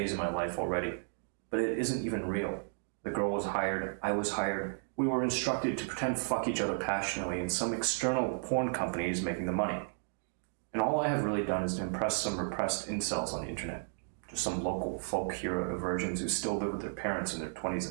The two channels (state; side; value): silent; left; digital silence